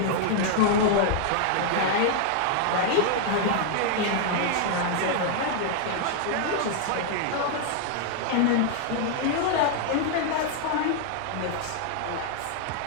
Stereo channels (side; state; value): both; different; correlation 0.00